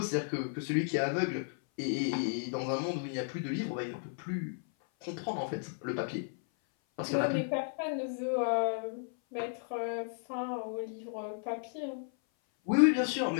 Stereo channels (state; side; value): silent; right; 55 dB below the other